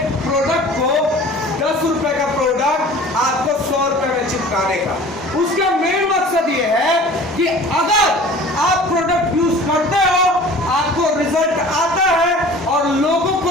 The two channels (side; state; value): both; normal; correlation 0.44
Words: प्रोडक्ट को 10 रुपए का प्रोडक्ट आपको 100 रुपए में चिपकाने का। उसका मेन मकसद ये है कि अगर आप प्रोडक्ट यूज करते हो, आपको रिजल्ट आता है और लोगों